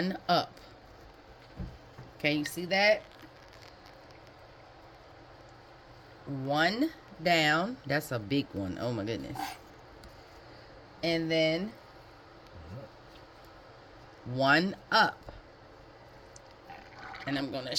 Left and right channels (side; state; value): both; identical; correlation 1.00